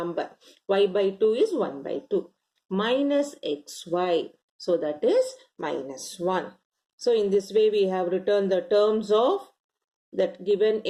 Y by 2 is 1 by 2. Minus xy. So that is minus 1. So in this way, we have written the terms of that given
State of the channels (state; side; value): identical; both; correlation 1.00